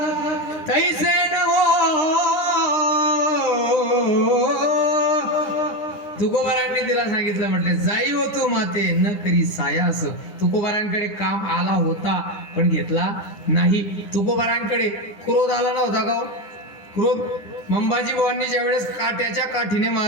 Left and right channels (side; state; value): right; late; 10 ms